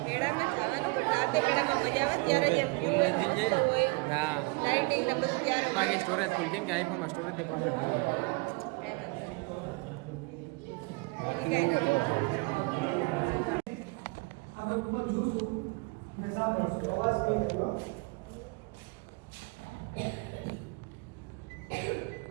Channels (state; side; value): quieter; left; 28.1 dB